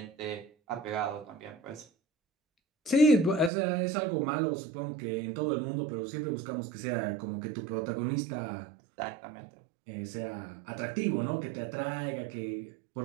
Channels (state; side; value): drops out; left; at 3.5 s